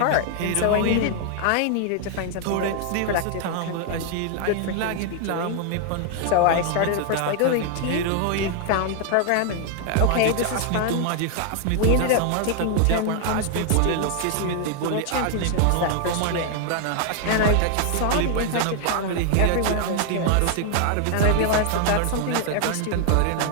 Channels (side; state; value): both; different; correlation 0.00